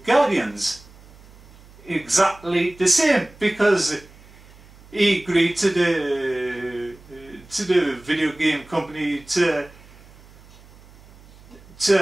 Guardians. Exactly the same, because he agreed to the video game company to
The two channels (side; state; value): right; noise; hum, 24 dB below the sound